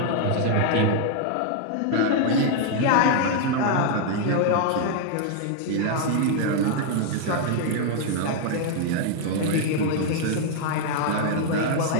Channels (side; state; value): both; different; correlation 0.00